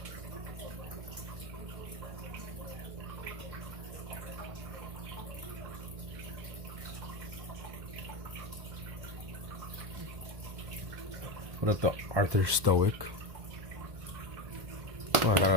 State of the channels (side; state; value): left; late; 1.1 ms